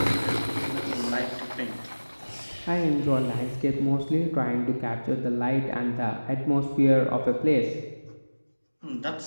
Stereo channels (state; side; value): inverted; both; correlation -1.00